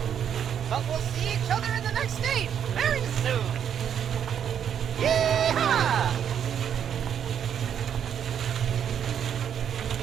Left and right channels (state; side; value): quieter; left; 8.7 dB